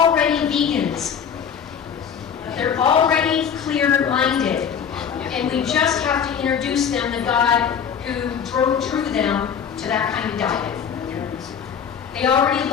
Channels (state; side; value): quieter; right; 7.6 dB